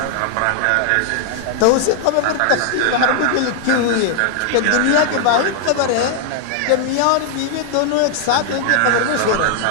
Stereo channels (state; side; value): different; both; correlation 0.00